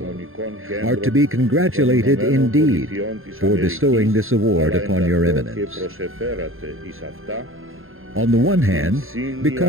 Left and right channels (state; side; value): late; left; 0.61 ms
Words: are to be congratulated indeed for bestowing this award upon your eminence. On the one hand,